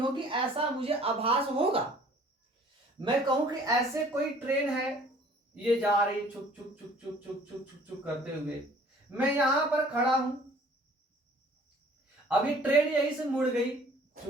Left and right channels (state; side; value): normal; both; correlation 0.53